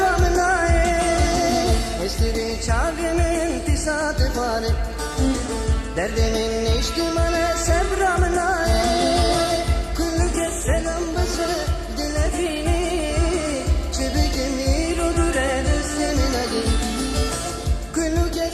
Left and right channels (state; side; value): identical; both; correlation 1.00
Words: aye. Estiri çavimin tisatı bari derdimin içtimale sevramın aye. Kulluke selam bası dilefini çibikim irodur edesimin agi. Kulluke